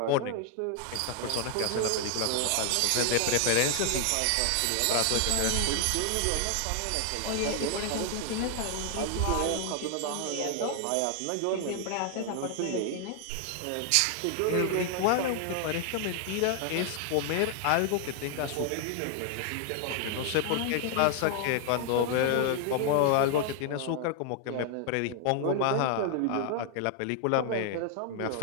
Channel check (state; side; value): different; both; correlation 0.00